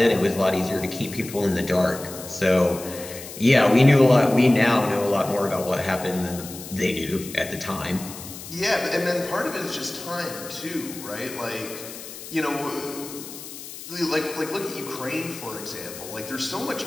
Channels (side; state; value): left; noise; hiss, 13 dB below the sound